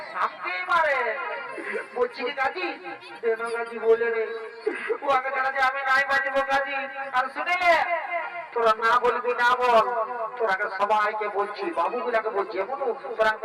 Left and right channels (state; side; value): identical; both; correlation 1.00